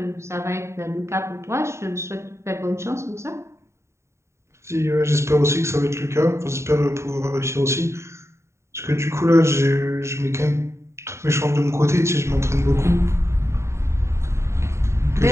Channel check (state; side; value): late; left; 0.13 ms